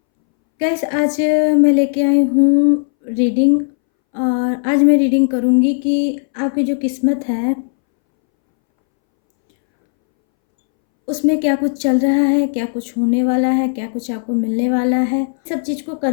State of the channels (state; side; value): silent; right; 66 dB below the other